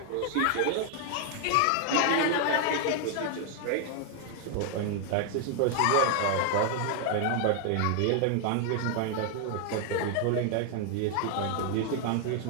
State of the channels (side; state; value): both; different; correlation 0.00